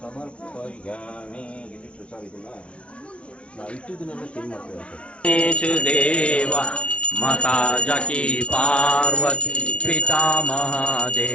इदिಟ್ಟು ಸರ್ ಇದನ್ನ ನಾವು ಇಟ್ಟಿದ್ದನ್ನೆಲ್ಲ ಚೇಂಜ್ ಮಾಡ್ತೀವಿ ಸರ್ गणेश देव माता जकी पार्वती पिता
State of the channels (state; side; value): late; right; 0.061 ms